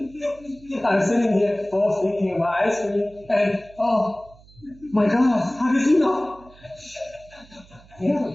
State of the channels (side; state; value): right; noise; hum, 25 dB below the sound